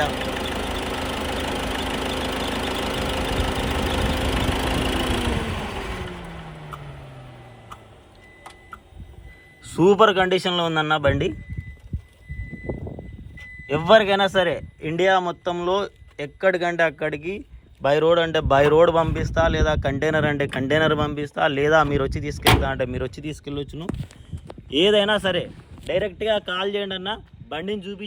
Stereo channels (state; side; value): identical; both; correlation 1.00